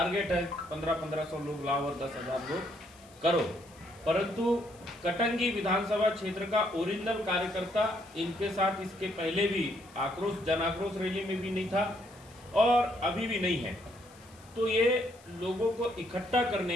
है 1500 लोग लाओ और 10,000 लोग करो, परंतु कटंगी विधानसभा क्षेत्र का ओरिजिनल कार्यकर्ता इनके साथ इसके पहले भी जन आक्रोश रैली में भी नहीं था और अभी भी नहीं है। तो ये लोगों को इकट्ठा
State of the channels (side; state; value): left; noise; hiss, 26 dB below the sound